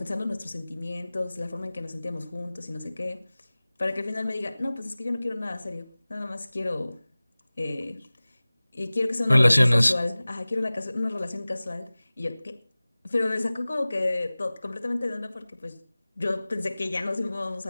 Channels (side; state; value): both; inverted; correlation -0.99